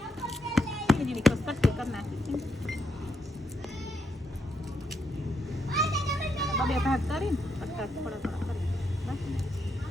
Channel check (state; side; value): normal; both; correlation 0.79